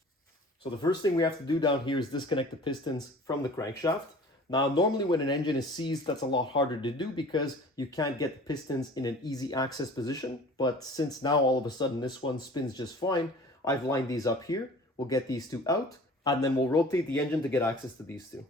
So the first thing we have to do down here is disconnect the pistons from the crankshaft. Now, normally when an engine is seized, that's a lot harder to do because you can't get the pistons in an easy access position. But since now all of a sudden this one spins just fine, I've lined these up here. We'll get these two out and then we'll rotate the engine to get access to these two.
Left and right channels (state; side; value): normal; both; correlation 0.45